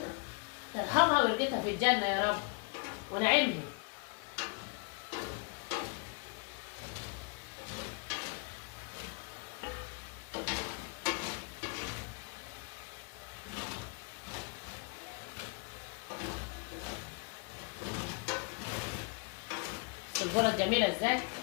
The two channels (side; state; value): right; quieter; 33.7 dB